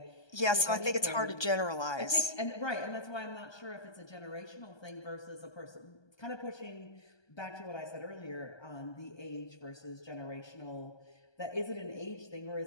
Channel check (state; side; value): late; right; 1.2 ms